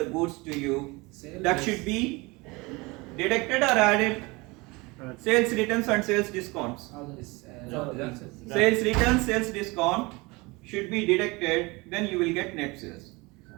goods to you, that should be deducted or added. Sales returns and sales discounts. Sales returns, sales discount should be deducted, then you will get net sales.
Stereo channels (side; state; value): left; quieter; 24.7 dB